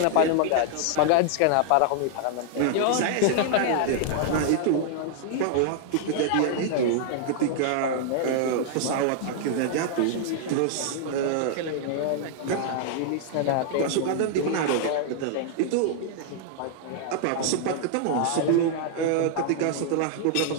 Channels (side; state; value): both; different; correlation -0.01